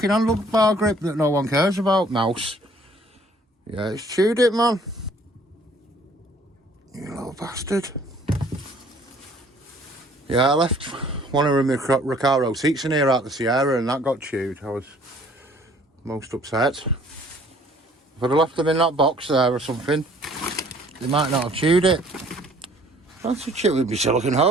handlebar grip that no one cares about, mouse? Yeah, it's chewed it, man. You little bastard. Yeah, I left one of my Recaro seats in here at the Sierra and that got chewed. I was most upset. If I'd have left them in that box there or something, they might not have chewed it. That's a chew with my silicone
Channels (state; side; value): normal; both; correlation 0.57